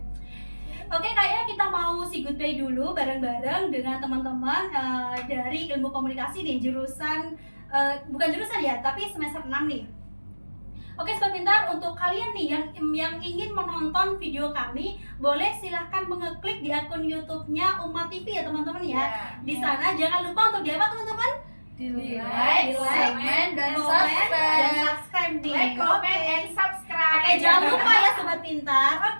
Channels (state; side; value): inverted; both; correlation -1.00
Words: Oke, kayaknya kita mau say goodbye dulu bareng-bareng dengan teman-teman dari ilmu komunikasi di jurusan bukan jurusan ya, tapi semester 6 nih. Oke, Sobat Pintar, untuk kalian nih yang ingin menonton video kami, boleh silahkan mengeklik di akun YouTube-nya Umat TV ya teman-teman ya. Di sana jangan lupa untuk di apa teman-teman? Di like, comment, dan subscribe nih. Like, comment, Oke. and subscribe. Oke, jangan lupa ya Sobat Pintar.